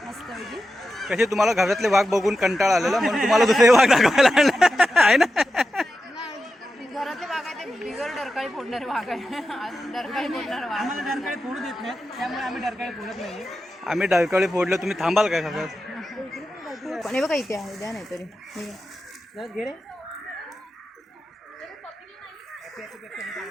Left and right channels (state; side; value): normal; both; correlation 0.91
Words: मस्त पैकी. कसे तुम्हाला घरातले वाघ बघून कंटाळा आलेला म्हणून तुम्हाला दुसरे वाघ दाखवायला आणले. आहे ना? घरातले वाघ आहे ते बिगर डरकाळी फोडणारे वाघ आहे. डरकाळी फोडणारे वाघ. आम्हाला डरकाळी फोडू देत नाही, त्यामुळे आम्ही डरकाळी फोडत नाही. आम्ही डरकाळी फोडलं, तुम्ही थांबाल काय खातात? पण हे बघा इथे आहे, द्या नाही तरी.